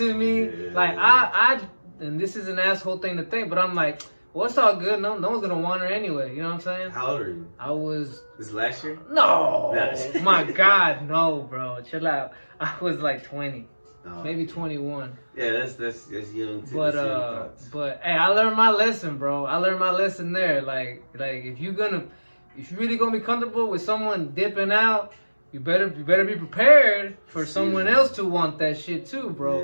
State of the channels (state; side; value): inverted; both; correlation -1.00